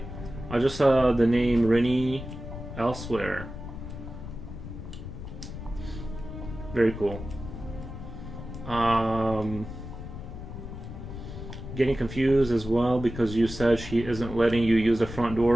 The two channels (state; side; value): noise; left; rumble, 10 dB below the sound